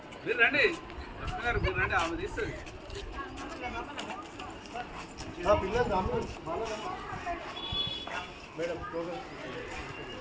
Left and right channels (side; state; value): both; identical; correlation 1.00